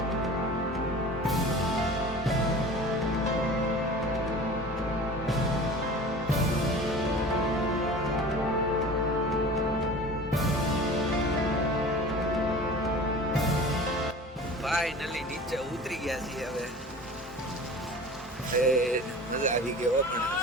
ફાઇનલી નીચે ઉતરી ગયા છીએ હવે. મજા આવી ગયો પણ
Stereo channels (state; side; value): normal; both; correlation 0.39